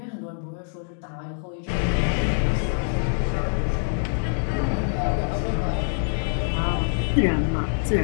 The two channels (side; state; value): right; silent; digital silence